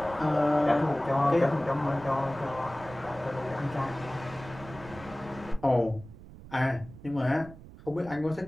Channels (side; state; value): right; noise; rumble, 17 dB below the sound